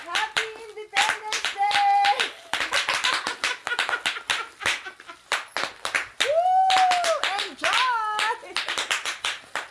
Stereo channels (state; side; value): identical; both; correlation 1.00